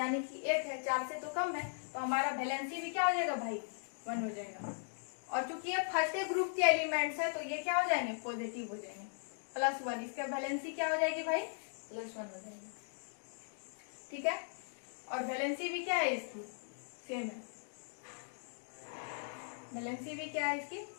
कि 1 है, 4 से तो कम है, तो हमारा वैलेंसी भी क्या हो जाएगा भाई? 1 हो जाएगा। और चूंकि ये फर्स्ट ग्रुप के एलिमेंट्स है तो ये क्या हो जाएंगे? पॉजिटिव हो जाएंगे, +1। इसका वैलेंसी क्या हो जाएगी भाई? +1 हो जाएगी। ठीक है, और वैलेंसी भी क्या है इसकी? सेम है। वैलेंसी भी क्या है इसकी?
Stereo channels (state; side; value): silent; right; digital silence